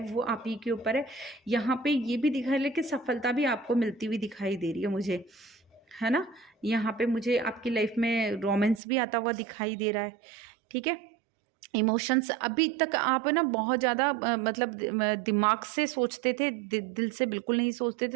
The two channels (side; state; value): left; drops out; at 8.8 s